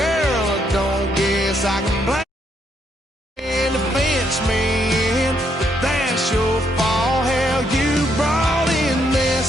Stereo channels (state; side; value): normal; both; correlation 0.74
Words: I don't guess I can blame the fence man, but that's your